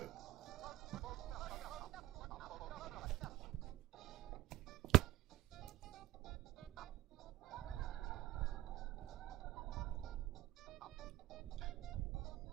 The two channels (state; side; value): quieter; left; 15.6 dB